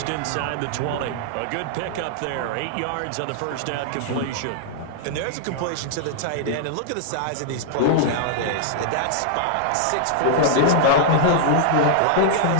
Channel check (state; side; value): different; both; correlation -0.01